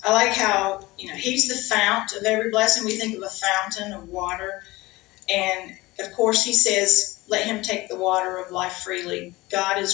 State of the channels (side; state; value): right; quieter; 20.5 dB